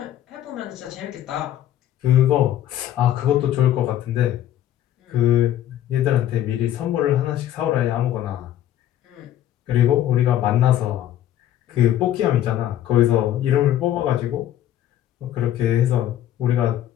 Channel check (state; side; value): quieter; right; 12.1 dB